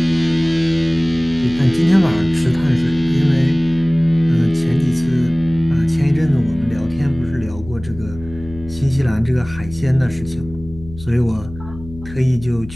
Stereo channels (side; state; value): left; noise; hum, 15 dB below the sound